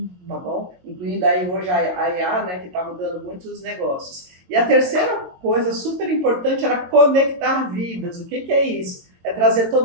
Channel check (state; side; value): late; left; 22 ms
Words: tá bom? Incluindo aí hoje a IA, né, que está mudando muitos negócios. E a terceira coisa super importante era conectar vidas. O que é isso? É trazer